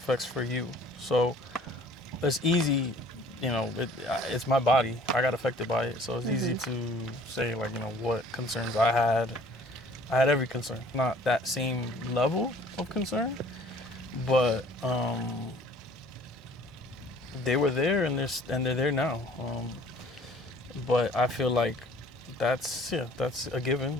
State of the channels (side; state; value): both; normal; correlation 0.53